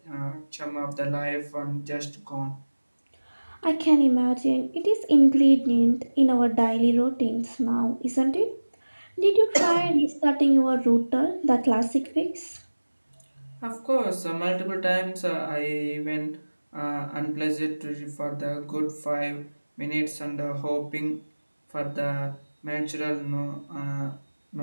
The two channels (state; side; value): inverted; both; correlation -1.00